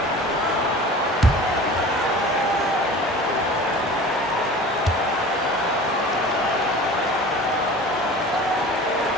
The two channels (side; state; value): both; normal; correlation 0.40